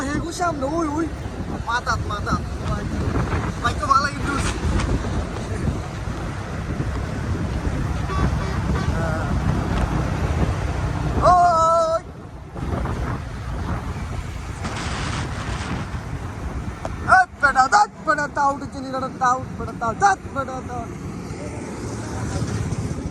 হেগু সামনে ওই ওই মাথাত মাথাত ভাই তো ভালো কিন্তু ওই বেটা দাঁত বেটা তাও চিনি না তাও বেটা তাও দাঁত বেটা তাও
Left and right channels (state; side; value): identical; both; correlation 1.00